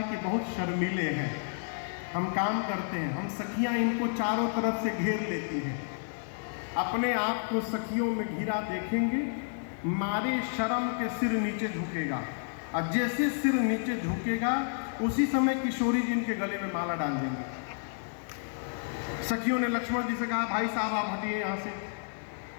कि बहुत शर्मीले हैं, हम काम करते हैं। हम सखियां इनको चारों तरफ से घेर लेती हैं। अपने आप को सखियों में घिरा देखेंगे, मारे शर्म के सिर नीचे झुकेगा, और जैसे सिर नीचे झुकेगा उसी समय किशोरी जी इनके गले में माला डाल देंगे। सखियों ने लक्ष्मण जी से कहा भाई साहब आप हटिए यहाँ से।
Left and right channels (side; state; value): right; silent; 57 dB below the other